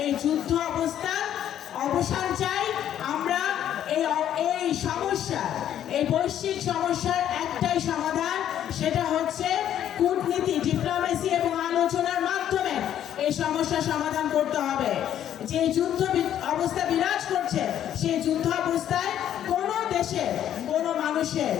এই যুদ্ধ অবস্থার অবসান চাই। আমরা এই সমস্যা, এই বৈশ্বিক সমস্যার একটাই সমাধান, সেটা হচ্ছে কূটনীতি, ডিপ্লোমেসি এবং আলোচনার মাধ্যমে এই সমস্যা সমাধান করতে হবে। যে যুদ্ধ অবস্থা বিরাজ করছে, সেই যুদ্ধ অবস্থায় কোনো দেশের কোনো মানুষের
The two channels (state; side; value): quieter; right; 10.7 dB